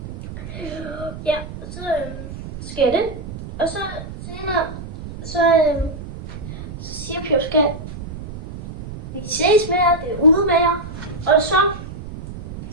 Ja, og så sker det. Og så senere, så siger Pjovs kat, vi ses med jer, det er ude med jer. Og så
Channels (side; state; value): right; noise; rumble, 11 dB below the sound